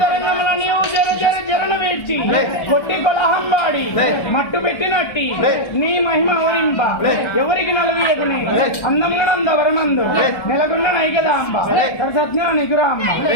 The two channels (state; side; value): late; right; 1.3 ms